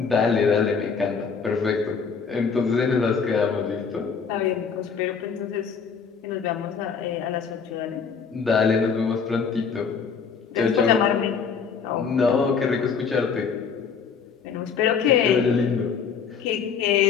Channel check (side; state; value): right; quieter; 6.1 dB